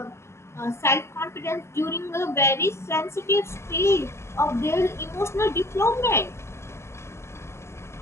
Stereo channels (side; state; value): right; late; 0.13 ms